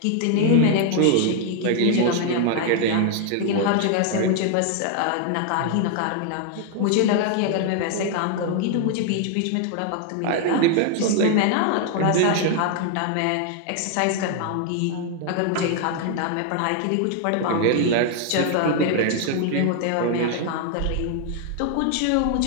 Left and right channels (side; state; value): both; different; correlation 0.00